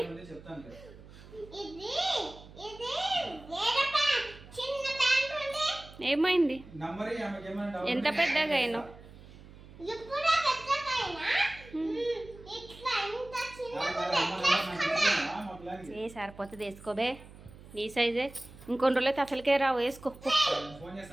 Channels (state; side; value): noise; right; hum, 19 dB below the sound